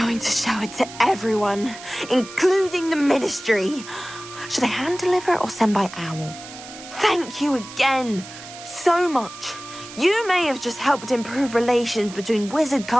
to show it to everyone, including the Ministry. Should I hand deliver it or send by owl? Thank you again. So much. You may have just helped improve relations between wizard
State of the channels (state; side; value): noise; right; hiss, 15 dB below the sound